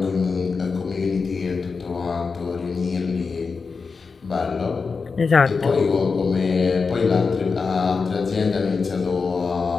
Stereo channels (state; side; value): quieter; right; 4.8 dB